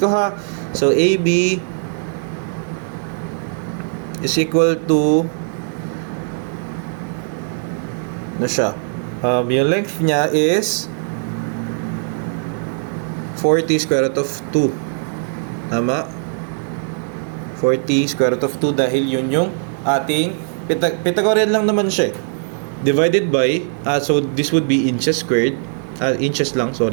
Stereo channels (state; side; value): silent; left; digital silence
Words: ko ha. So, AB is equal to na siya. Yung length niya is 40 square root of 2. Tama? 40 square root of 2 dahil yun yung ating Pythagorean lang naman siya. Divided by, so this would be inches squared. Inches lang,